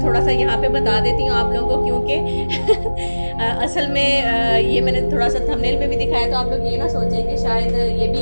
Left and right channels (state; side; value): inverted; both; correlation -1.00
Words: थोड़ा सा यहाँ पे बता देती हूँ आप लोगों को, क्योंकि असल में ये मैंने थोड़ा सा थंबनेल में भी दिखाया, तो आप लोग ये ना सोचें कि शायद ये